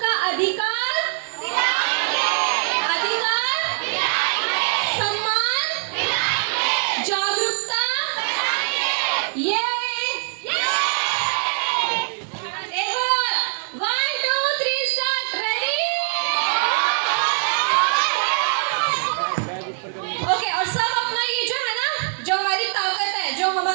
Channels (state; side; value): silent; left; 64 dB below the other